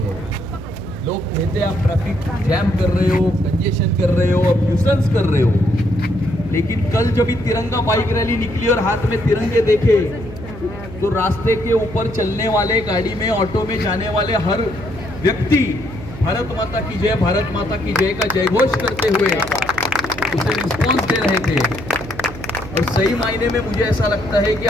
लोग कहते हैं आप ट्रैफिक जैम कर रहे हो, कंजेशन कर रहे हो, अब न्यूसेंस कर रहे हो। लेकिन कल जब ये तिरंगा बाइक रैली निकली और हाथ में तिरंगे देखे तो रास्ते के ऊपर चलने वाले, गाड़ी में, ऑटो में जाने वाले हर व्यक्ति भारत माता की जय, भारत माता की जय का जयघोष करते हुए उसे रिस्पॉन्स दे रहे थे। और सही मायने में मुझे ऐसा लगता है कि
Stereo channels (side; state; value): right; noise; hum, 14 dB below the sound